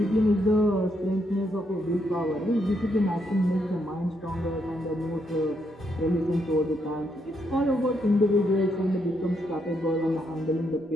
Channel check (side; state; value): both; normal; correlation 0.77